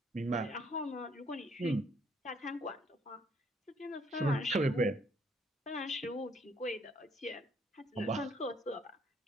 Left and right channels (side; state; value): both; normal; correlation 0.66